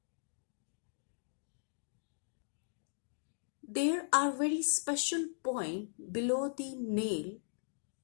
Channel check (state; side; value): silent; right; digital silence